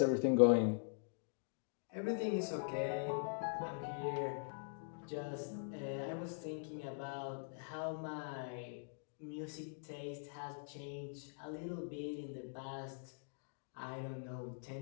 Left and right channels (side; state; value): right; silent; digital silence